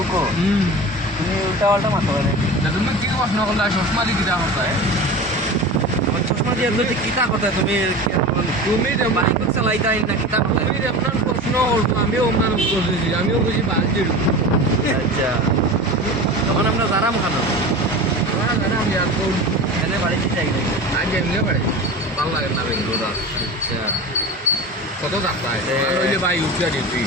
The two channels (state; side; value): normal; both; correlation 0.32